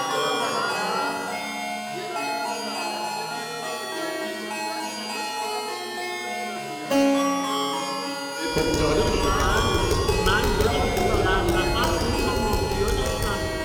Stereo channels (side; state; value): both; identical; correlation 1.00